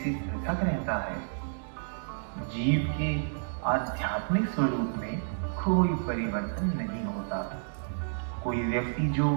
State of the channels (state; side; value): silent; left; digital silence